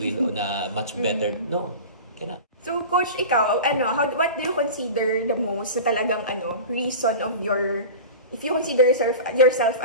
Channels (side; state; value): both; inverted; correlation -0.32